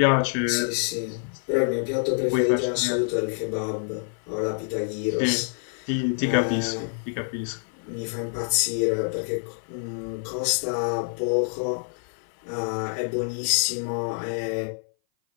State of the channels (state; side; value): silent; right; 57 dB below the other